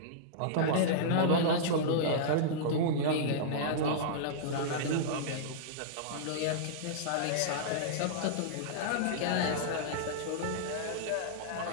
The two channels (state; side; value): different; both; correlation -0.03